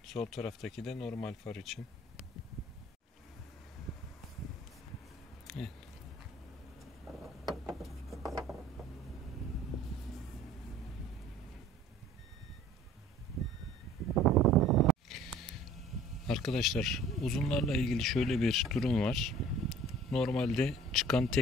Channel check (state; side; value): normal; both; correlation 0.50